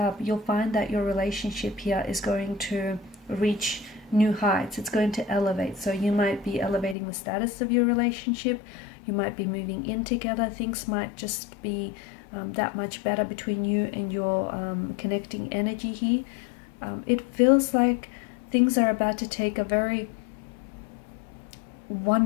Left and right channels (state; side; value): drops out; right; at 7.0 s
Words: you'll find that your relationship here is going to reach new heights. It's going to elevate. So you might be elevating the status of your relationship. You might be moving in together. Things might just be that much better between you and your connecting energy here. It feels like things are about to take a very